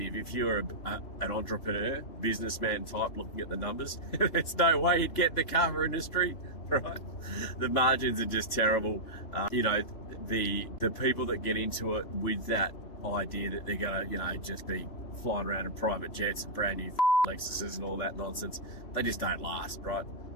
if you're an entrepreneur, businessman type looking at the numbers, there's no way you'd get the Kava industry, right? The margins are just terrible. You know, the people that get into it with that idea that they're gonna, you know, just be flying around in private jets and brand new Lexuses and all that nonsense, they just don't last, right?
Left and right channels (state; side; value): late; right; 3.0 ms